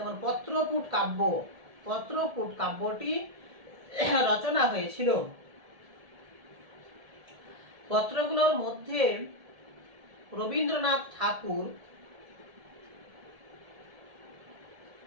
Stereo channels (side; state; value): left; late; 1.7 ms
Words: পত্রপুট কাব্য, পত্রপুট কাব্যটি রচনা হয়েছিল। পত্রগুলোর মধ্যে রবীন্দ্রনাথ ঠাকুর